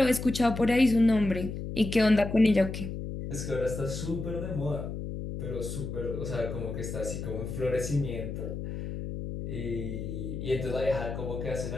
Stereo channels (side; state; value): left; noise; hum, 6 dB below the sound